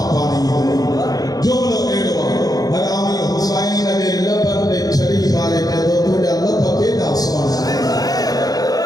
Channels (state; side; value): late; right; 0.18 ms